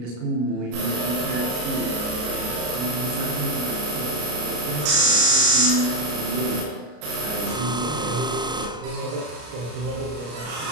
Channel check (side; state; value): left; late; 33 ms